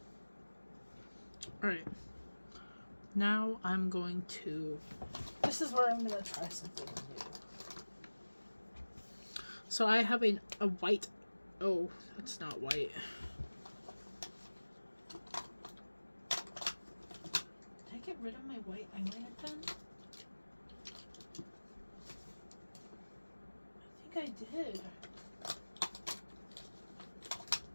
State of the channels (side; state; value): both; inverted; correlation -1.00